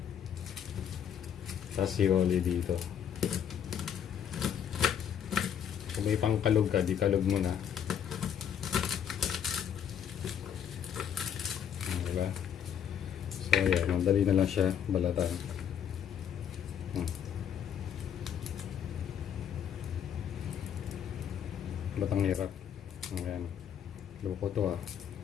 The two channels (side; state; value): right; quieter; 8.8 dB